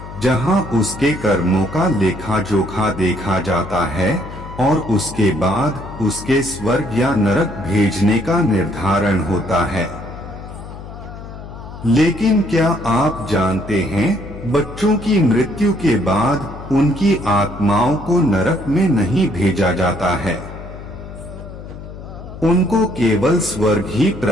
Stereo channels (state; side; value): noise; left; hum, 13 dB below the sound